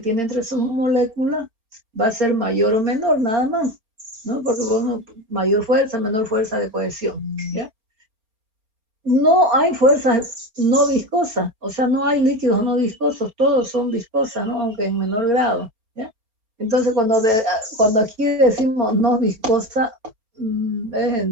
tiene entre sus moléculas va a ser mayor o menor, nada más, ¿no? Porque bueno, mayor fuerza, menor fuerza de cohesión, ¿ya? No hay fuerzas no viscosas, o sea, no hay líquidos no viscosos, todos son viscosas, ¿no? Aunque en menor grado, ¿ya? Entonces, cuando aquí decimos no viscosa, es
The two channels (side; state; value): left; late; 4.4 ms